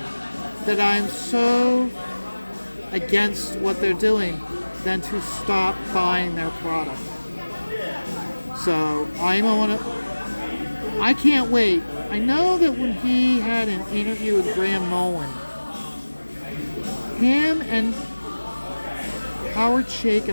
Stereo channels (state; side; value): inverted; both; correlation -1.00